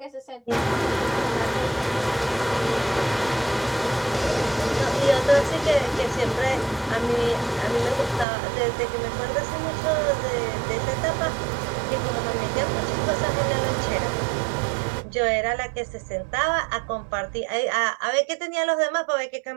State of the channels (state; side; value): drops out; left; at 8.2 s